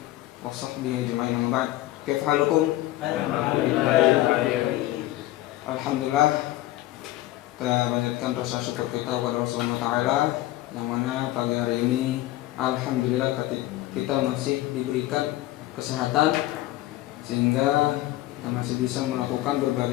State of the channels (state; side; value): quieter; right; 16.1 dB